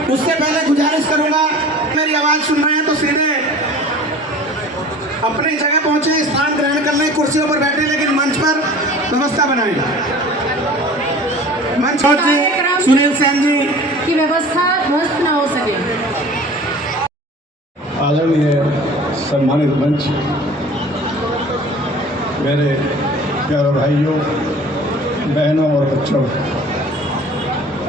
उससे पहले गुजारिश करूंगा, मेरी आवाज सुन रहे हैं तो सीधे अपनी जगह पहुंचे, स्थान ग्रहण कर लें, कुर्सियों पर बैठे, लेकिन मंच पर व्यवस्था बनाएं। मंच पर सुनील सेन जी की व्यवस्था ध्वस्त न हो सके। आदरणीय सम्मानित मंच, मेरे प्यारे भाइयों, बहनों और बच्चों,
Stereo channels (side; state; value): both; normal; correlation 0.43